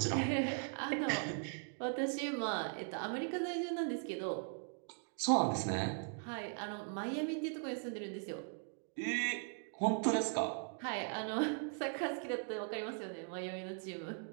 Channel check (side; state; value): left; silent; 51 dB below the other